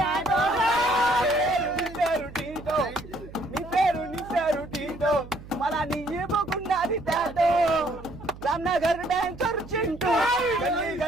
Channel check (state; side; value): noise; right; hum, 16 dB below the sound